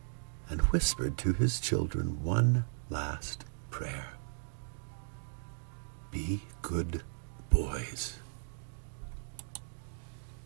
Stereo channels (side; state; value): left; silent; digital silence